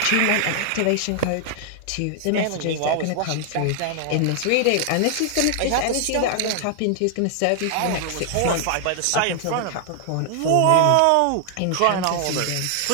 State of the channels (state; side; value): different; both; correlation 0.00